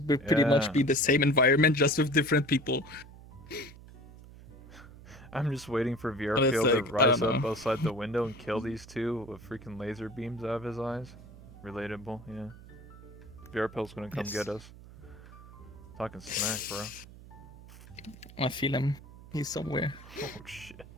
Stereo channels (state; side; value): noise; right; hum, 18 dB below the sound